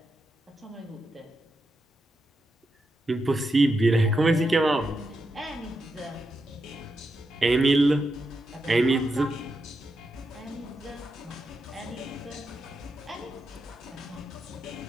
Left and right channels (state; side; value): normal; both; correlation 0.85